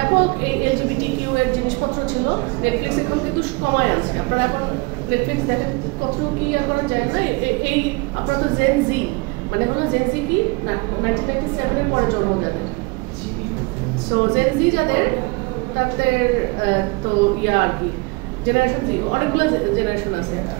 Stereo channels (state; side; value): quieter; left; 27.1 dB